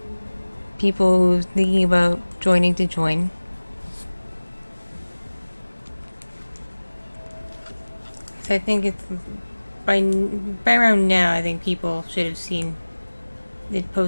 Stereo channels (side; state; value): both; inverted; correlation -1.00